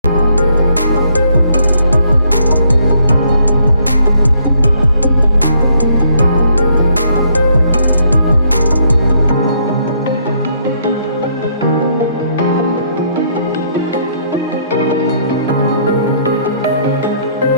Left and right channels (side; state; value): both; inverted; correlation -0.69